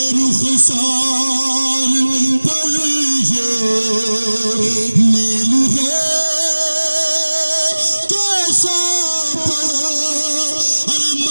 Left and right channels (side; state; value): both; inverted; correlation -1.00